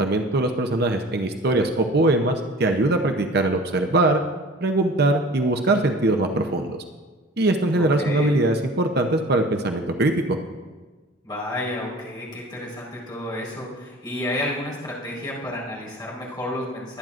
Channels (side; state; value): both; normal; correlation 0.43